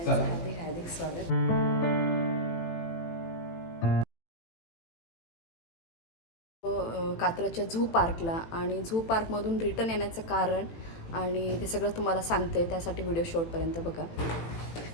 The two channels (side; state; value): right; late; 18 ms